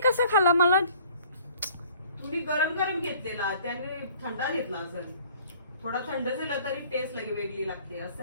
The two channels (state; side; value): inverted; both; correlation -0.53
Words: कसा खाला? मला तुम्ही गरम गरम घेतलेला त्याने थंडा घेतला असेल. थोडा थंड झाला तरी टेस्ट लगे वेगळी लागते असं